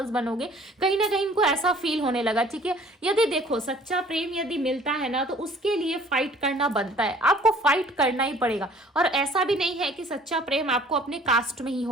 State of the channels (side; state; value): both; normal; correlation 0.53